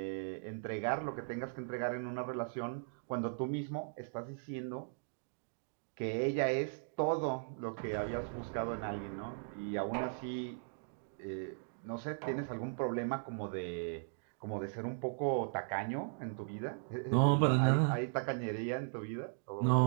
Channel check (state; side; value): silent; left; digital silence